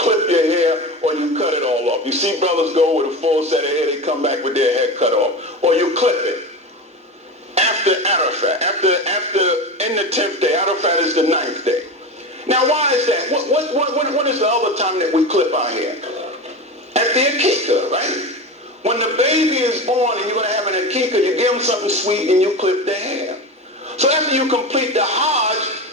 clip your hair or you cut it all off. You see brothers go with a full set of hair, they come back with their hair cut off. Or you clip it. After Arafat, in the 10th day, Arafat is the 9th day. Now why is that? What is the other time that we clip our hair? At the Akikah, right? When the baby is born and you're going to have an Akikah, you give them something sweet and you clip their hair. So after you complete the Hajj,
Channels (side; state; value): both; normal; correlation 0.25